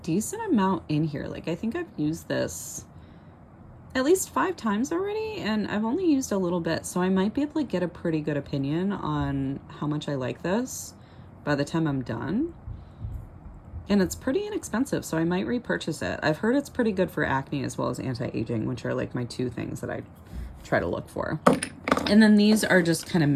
amount in here. Like I think I've used this at least 5 times already, and I've only used a little bit, so I might be able to get a pretty good opinion on how much I like this by the time I'm done. And it's pretty inexpensive, so I might repurchase it. I've heard it's pretty good for acne as well as anti-aging, which are like my 2 things that I try to look for. And then these are just kind of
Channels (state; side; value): identical; both; correlation 1.00